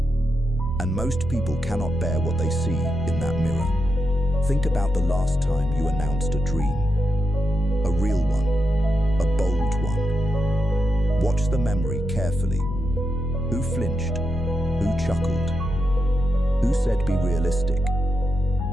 and most people cannot bear what they see in that mirror. Think about the last time you announced a dream, a real one, a bold one. Watch the memory carefully. Who flinched? Who chuckled? Who said be realistic?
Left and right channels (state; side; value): normal; both; correlation 0.85